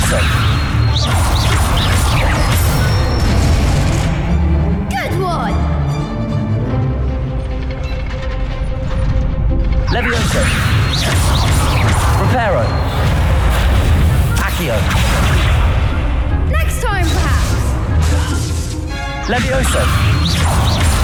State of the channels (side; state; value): both; identical; correlation 1.00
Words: Good one! Levioso! Reparo! Accio! Next time, perhaps! Levioso!